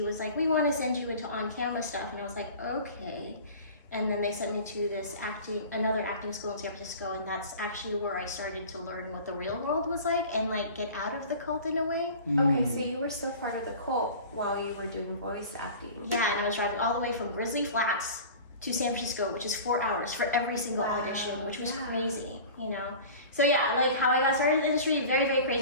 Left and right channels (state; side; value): inverted; both; correlation -0.39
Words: was like, we want to send you into on-camera stuff. And I was like, okay. And then they sent me to this another acting school in San Francisco, and that's actually where I started to learn what the real world was like and like get out of the cult in a way. Okay, so you were still part of the cult while you were doing voice acting. Yeah, and I was driving all the way from Grizzly Flats to San Francisco, which is 4 hours for every single audition, which was crazy, you know? So yeah, like how I got started in the industry, very, very